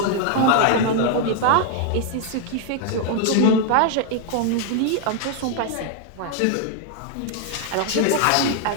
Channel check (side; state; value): both; different; correlation 0.00